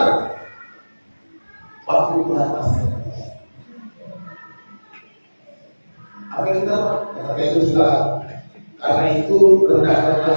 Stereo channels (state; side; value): inverted; both; correlation -1.00